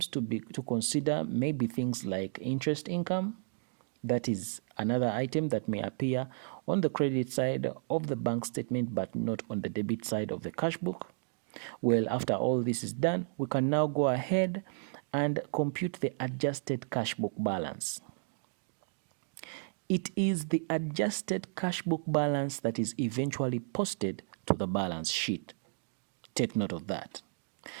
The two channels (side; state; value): left; silent; digital silence